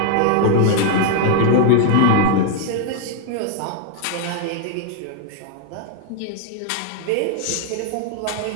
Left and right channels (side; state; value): both; different; correlation 0.00